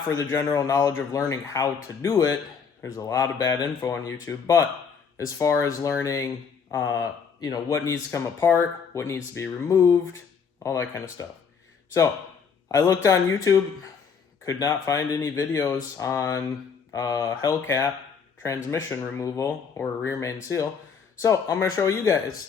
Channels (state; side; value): quieter; right; 6.2 dB